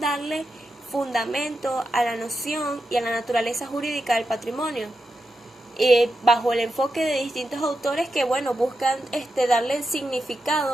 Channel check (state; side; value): normal; both; correlation 0.88